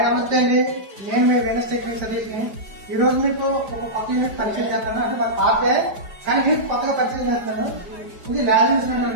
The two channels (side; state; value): left; late; 4.9 ms